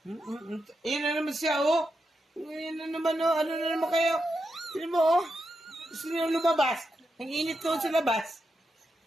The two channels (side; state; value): both; normal; correlation 0.86